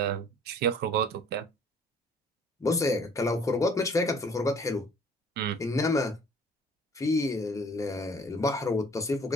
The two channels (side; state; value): both; normal; correlation 0.54